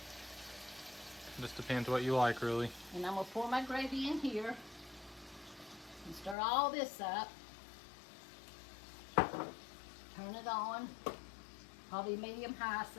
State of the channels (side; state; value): right; drops out; at 6.4 s